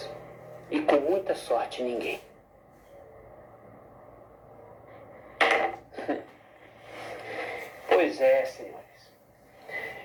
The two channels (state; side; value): identical; both; correlation 1.00